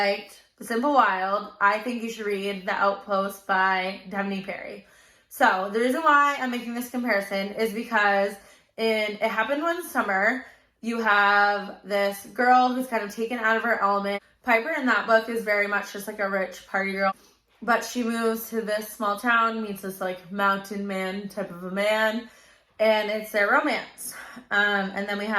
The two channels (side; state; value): both; identical; correlation 1.00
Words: The Simple Wild, I think you should read The Outpost by Devney Perry. So the reason why I'm making this comparison is because in It Happened One Summer, you have this girl who's kind of taken out of her element. Piper in that book is very much just like a rich party girl, but she moves to this small town, meets this like mountain man type of a man, and it's their romance. And then we